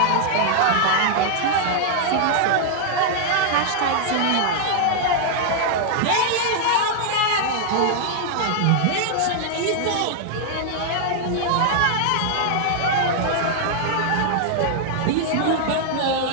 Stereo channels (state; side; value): different; both; correlation 0.00